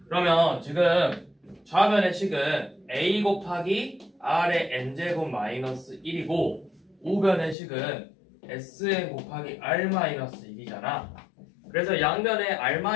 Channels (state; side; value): drops out; right; at 7.6 s